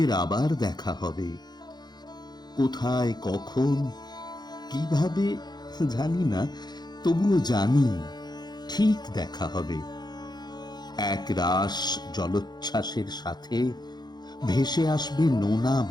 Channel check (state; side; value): late; right; 0.20 ms